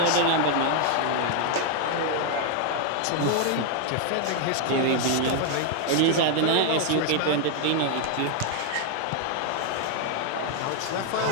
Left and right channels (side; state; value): both; different; correlation 0.00